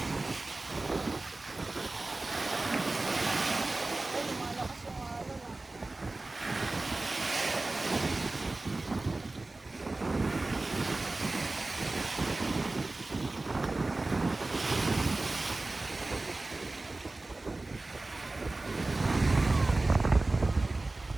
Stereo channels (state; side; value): quieter; left; 3.1 dB